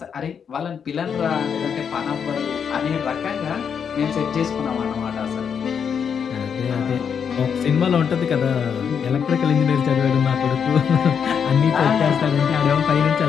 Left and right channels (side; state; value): right; quieter; 7.2 dB